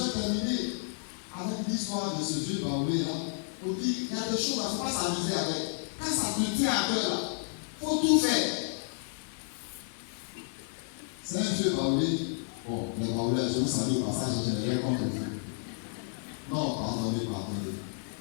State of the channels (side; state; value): right; silent; digital silence